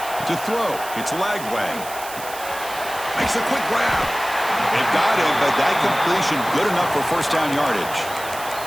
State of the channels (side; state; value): right; noise; hiss, 12 dB below the sound